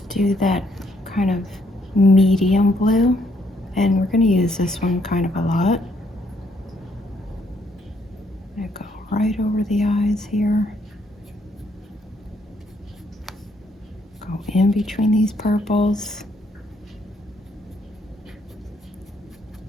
do that kind of medium blue, and we're going to use this one kind of a lot. I'm going to go right over the eyes here, go in between these purples.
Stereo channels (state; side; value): normal; both; correlation 0.71